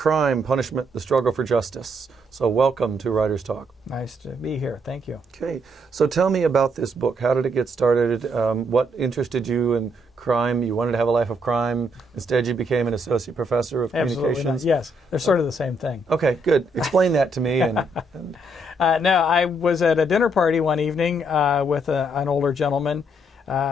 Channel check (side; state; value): both; normal; correlation 0.73